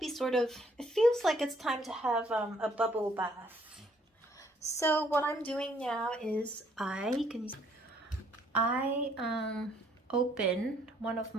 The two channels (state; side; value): normal; both; correlation 0.65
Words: it feels like it's time to have a bubble bath. So what I'm doing now is I open one of